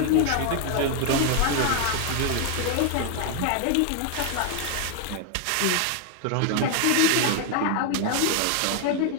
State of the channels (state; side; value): different; both; correlation 0.00